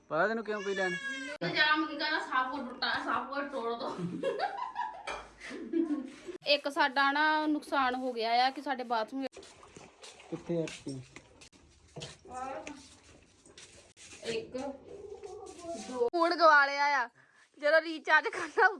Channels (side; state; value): both; identical; correlation 1.00